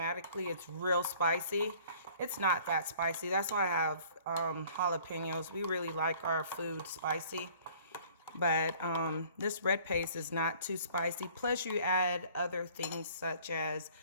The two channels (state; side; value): inverted; both; correlation -0.53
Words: it's real spicy. It's not that spicy. That's why I have jalapenos. We really like our food spicy. But this red paste is not too spicy. Plus you add other things such as